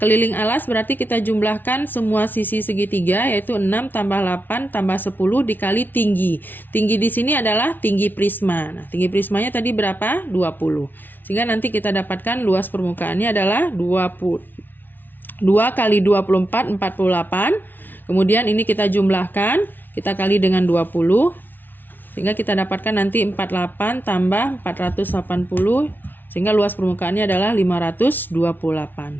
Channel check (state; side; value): late; right; 0.090 ms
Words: alas berarti kita jumlahkan semua sisi segitiga, yaitu 6 tambah 8 tambah 10 dikali tinggi. Tinggi di sini adalah tinggi prisma. Nah, tinggi prismanya tadi berapa? 20. Sehingga nanti kita dapatkan luas permukaannya adalah 2 kali 24, 48. Kemudian ini kita jumlahkan, kita kali dengan 20, sehingga kita dapatkan nanti 48 tambah 480, sehingga luas permukaannya adalah